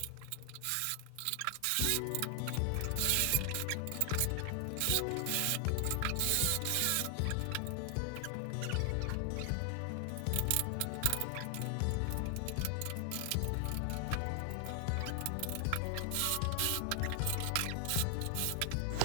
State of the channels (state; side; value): different; both; correlation 0.00